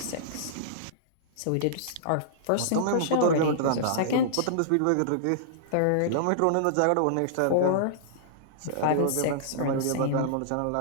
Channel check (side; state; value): both; different; correlation -0.02